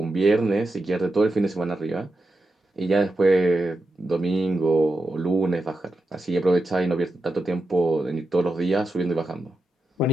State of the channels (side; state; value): both; normal; correlation 0.88